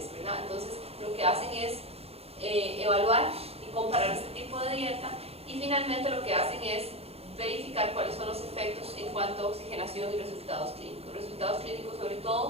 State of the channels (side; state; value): left; late; 0.29 ms